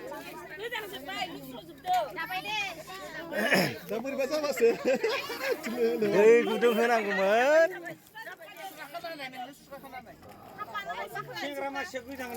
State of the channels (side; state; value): both; identical; correlation 1.00